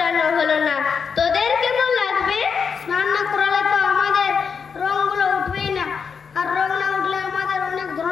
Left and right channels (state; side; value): quieter; right; 6.1 dB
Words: হলো না। তোদের কেমন লাগবে? স্নান না করালে তো আমাদের রংগুলো উঠবেই না, আর রং না উঠলে আমাদের অনেক